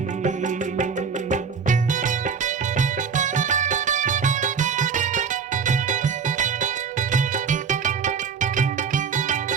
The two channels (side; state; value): left; quieter; 6.2 dB